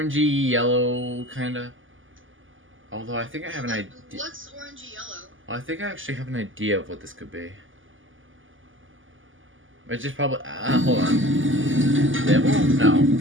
yellow, kinda. Although I think I have an idea. What's orangey yellow? I think I actually have an idea of what this could be. It's just probably... hold on. Dibble? No,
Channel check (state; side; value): late; left; 0.58 ms